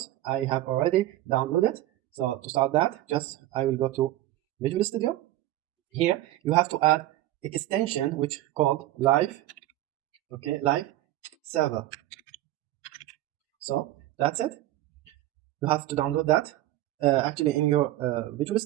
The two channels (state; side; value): quieter; left; 15.2 dB